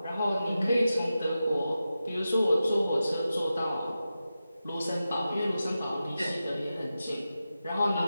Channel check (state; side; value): inverted; both; correlation -0.92